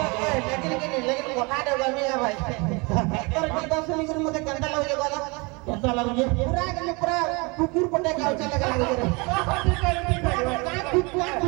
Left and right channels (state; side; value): quieter; left; 28.4 dB